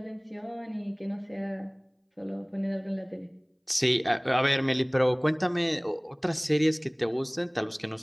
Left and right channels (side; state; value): both; identical; correlation 1.00